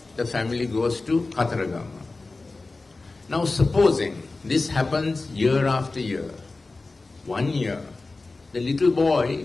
The family goes to Khataragama. Now supposing this happens year after year, 1 year, the little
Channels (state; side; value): quieter; right; 3.5 dB